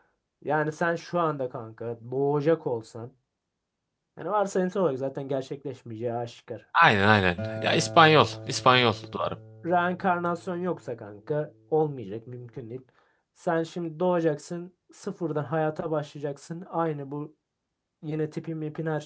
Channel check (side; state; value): both; identical; correlation 1.00